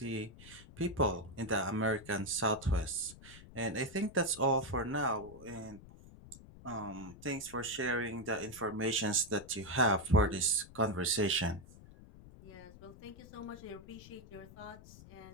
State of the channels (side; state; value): left; noise; rumble, 18 dB below the sound